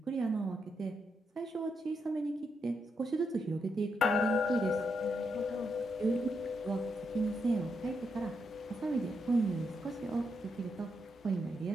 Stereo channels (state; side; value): normal; both; correlation 0.81